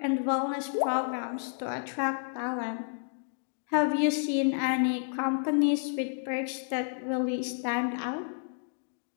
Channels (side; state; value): right; silent; digital silence